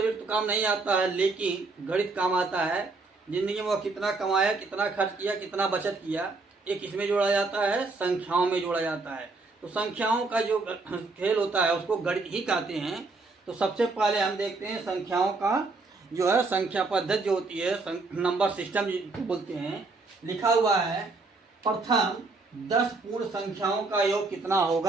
तो काम नहीं आता है, लेकिन गणित काम आता है। जिंदगी में वो कितना कमाया, कितना खर्च किया, कितना बचत किया, एक किसमें जोड़ा जाता है, संख्याओं में जोड़ा जाता है। तो संख्याओं का जो खेल होता है उसको गणित ही कहते हैं। तो सबसे पहले हम देखते हैं संख्याओं का जो है संख्या पद्धति जो होती है, नंबर सिस्टम जिसको बोलते हैं। लिखा हुआ है प्रथम 10 पूर्ण संख्याओं का योग कितना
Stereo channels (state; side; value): quieter; left; 3.6 dB